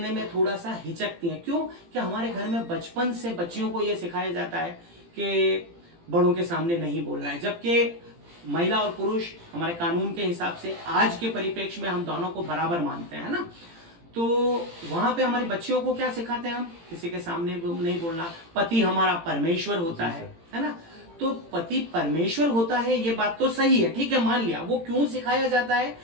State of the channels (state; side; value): late; left; 18 ms